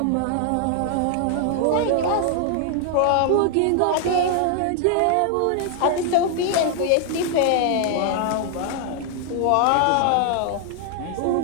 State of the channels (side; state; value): both; different; correlation 0.00